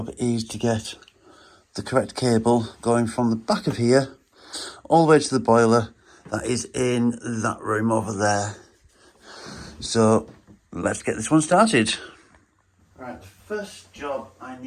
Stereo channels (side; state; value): both; identical; correlation 1.00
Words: is to get the correct cable going from the back of here all the way to the boiler that is in that room over there. So let's get this one started. Right, the first job I